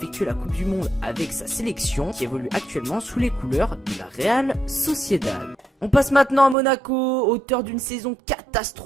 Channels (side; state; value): left; drops out; at 6.6 s